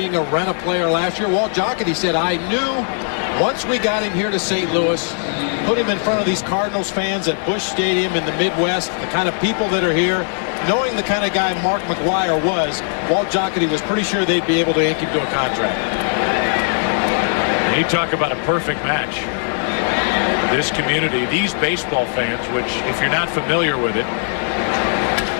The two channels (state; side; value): silent; right; digital silence